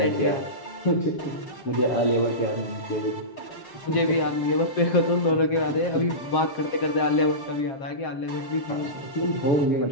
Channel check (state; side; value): late; right; 7.5 ms